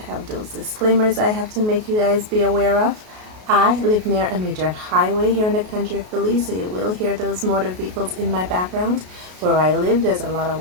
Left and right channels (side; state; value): left; late; 33 ms